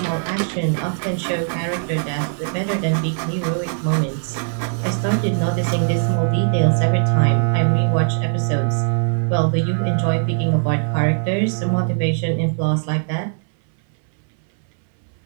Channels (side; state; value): left; silent; 66 dB below the other